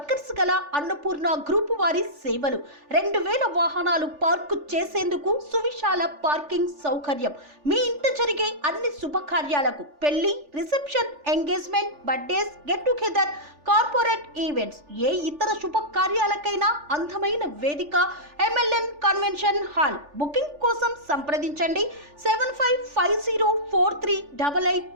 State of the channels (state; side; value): late; left; 3.4 ms